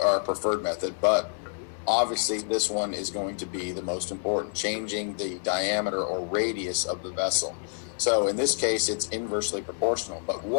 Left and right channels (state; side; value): silent; right; digital silence